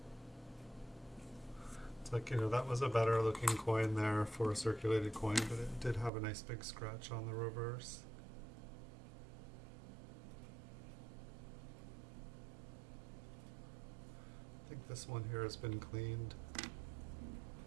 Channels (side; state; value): left; drops out; at 6.1 s